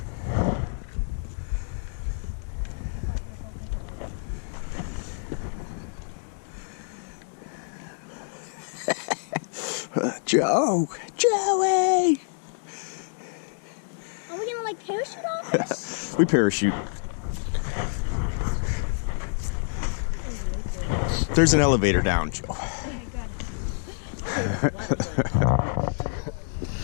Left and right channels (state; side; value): silent; right; digital silence